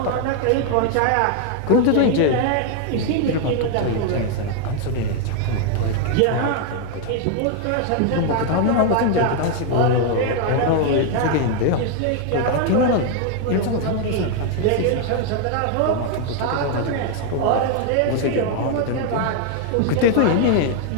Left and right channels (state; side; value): different; both; correlation 0.00